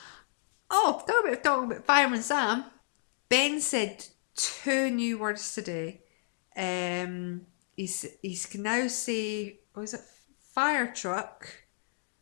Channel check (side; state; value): right; silent; digital silence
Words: Oh, talking about Fireman Sam. Ben said 2 new words today. He can now say, what is it? Fire truck.